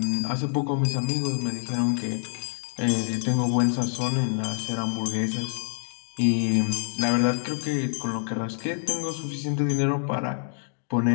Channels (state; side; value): silent; right; digital silence